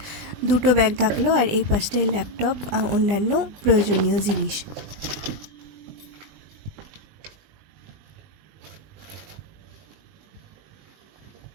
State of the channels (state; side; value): late; left; 20 ms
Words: দুটো ব্যাগ থাকলো, আর এই পাশটায় ল্যাপটপ অন্যান্য প্রয়োজনীয় জিনিস।